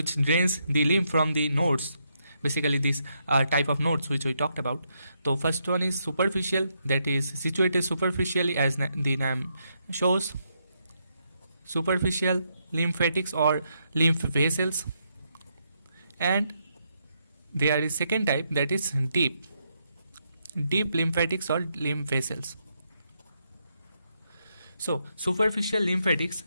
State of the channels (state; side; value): inverted; both; correlation -0.78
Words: drains the lymph from the nodes. Basically these type of nodes which we talked about. So first one is superficial, that is situated superficially, as the name shows. Superficial lymphatics or lymph vessels. And there is second type, that is deep lymphatics or lymph vessels. So superficial lymphatics